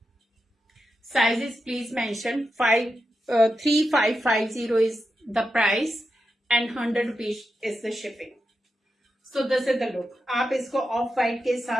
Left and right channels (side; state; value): both; normal; correlation 0.88